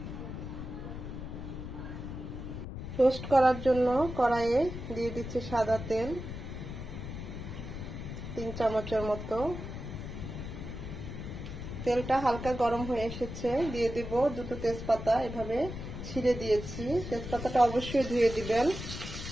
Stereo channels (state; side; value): noise; left; rumble, 8 dB below the sound